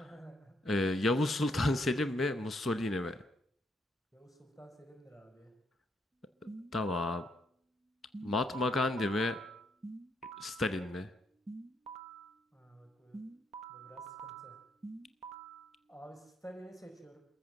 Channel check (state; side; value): normal; both; correlation 0.75